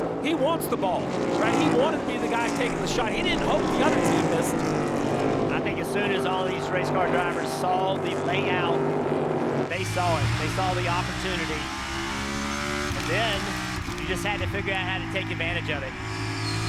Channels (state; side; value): identical; both; correlation 1.00